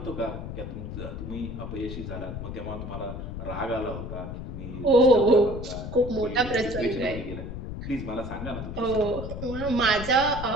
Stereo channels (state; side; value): noise; left; rumble, 7 dB below the sound